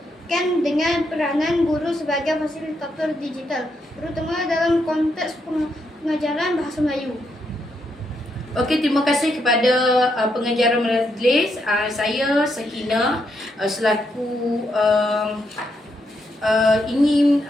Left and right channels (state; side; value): normal; both; correlation 0.79